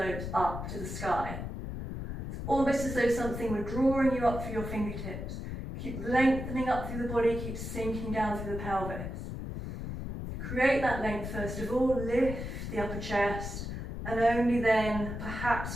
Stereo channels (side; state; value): left; noise; rumble, 6 dB below the sound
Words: up to the sky. It's almost as though something were drawing you up through your fingertips. Keep lengthening up through the body, keep sinking down through the pelvis. Create that length first of all, lift the upper chest, and only then